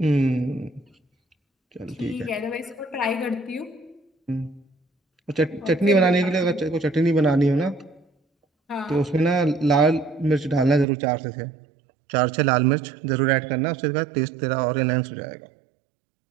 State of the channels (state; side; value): drops out; left; at 10.9 s